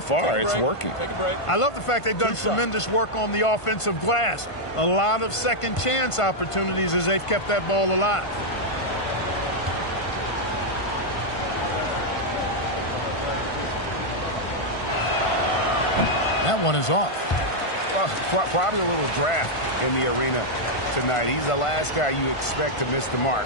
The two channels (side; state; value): right; late; 1.5 ms